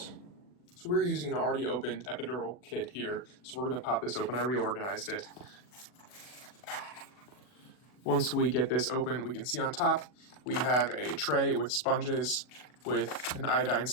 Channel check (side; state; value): right; late; 40 ms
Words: So we're using an already opened epidural kit here, so we're going to pop this open. I reorganized it. Once we get this open, we can see on top we have a tray with sponges with an iodine